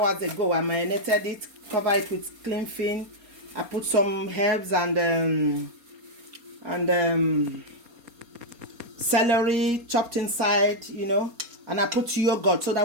ago. I marinated it, cover it with clean film. I put some herbs and celery chopped inside, and I put yogurt so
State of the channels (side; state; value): left; late; 4.3 ms